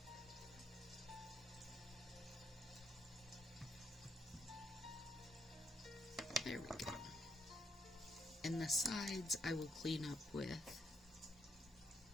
There we go. And the sides I will clean up with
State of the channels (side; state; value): both; normal; correlation 0.76